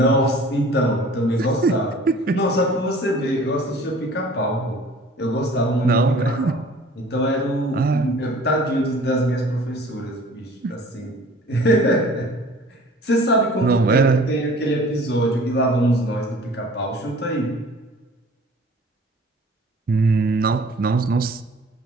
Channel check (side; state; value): both; normal; correlation 0.48